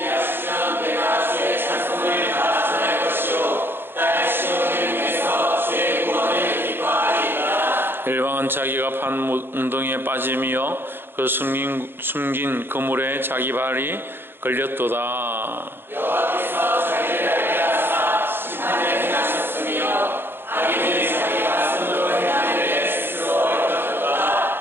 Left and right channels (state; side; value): late; left; 0.10 ms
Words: 내가 주의 찬송을 다 전할 것이요 딸 시온을 위해서 주의 구원을 기뻐하리이다. 일방은 자기가 판 웅덩이에 빠짐이여 그 숨긴 그물에 자기 발이 걸렸도다. 여호와께서 자기를 알게 하사 심판을 행하셨으며 악인은 자기가 손으로 행한 일에 스스로 얻었도다.